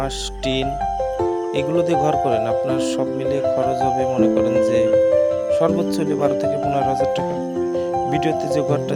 টিন এগুলো দিয়ে ঘর করেন, আপনার সব মিলিয়ে খরচ হবে মনে করেন যে সর্বোচ্চ হলে 12 থেকে 15,000 টাকা। ভিডিওতে যে ঘরটা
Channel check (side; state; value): both; identical; correlation 1.00